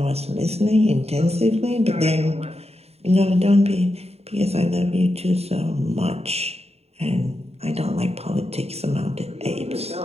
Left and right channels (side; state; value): left; late; 0.30 ms